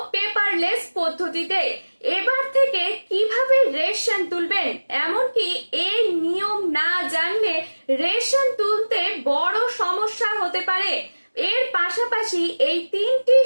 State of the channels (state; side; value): inverted; both; correlation -1.00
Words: পেপারলেস পদ্ধতিতে। এবার থেকে কিভাবে রেশন তুলবেন, এমনকি এই নিয়ম না জানলে রেশন তুলতে বড় সমস্যা হতে পারে। এর পাশাপাশি এই তিনটি